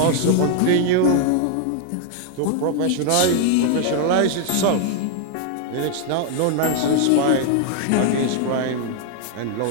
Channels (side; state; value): both; different; correlation 0.00